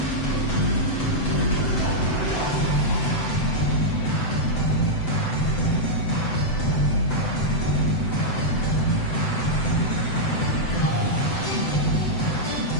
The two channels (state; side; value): late; right; 7.9 ms